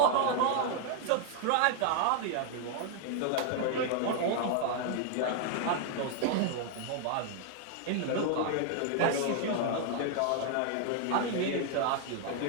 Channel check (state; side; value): different; both; correlation 0.00